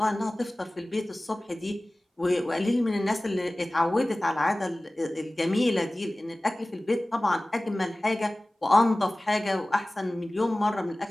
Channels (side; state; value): both; normal; correlation 0.98